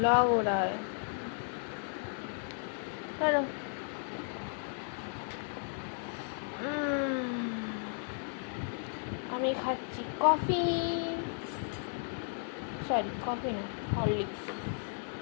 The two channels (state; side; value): silent; right; 55 dB below the other